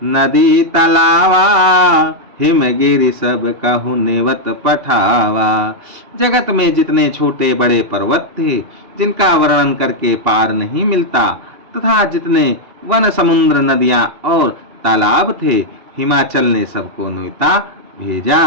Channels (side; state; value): left; late; 2.8 ms